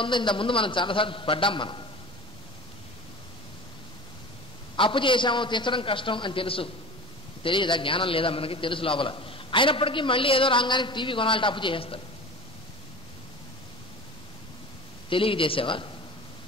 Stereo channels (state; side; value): normal; both; correlation 0.36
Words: ఉందో ఇంత ముందు మనం చాలాసార్లు పడ్డాం. మనం అప్పు చేశాము, తీర్చడం కష్టం అని తెలుసు, తెలియదా? జ్ఞానం లేదా మనకి? తెలుసు లోపల. అయినప్పటికీ మళ్ళీ ఏదో రాగానికి టీవీ కొనాలంటే అప్పు చేసేస్తాడు. తెలియక చేసావా?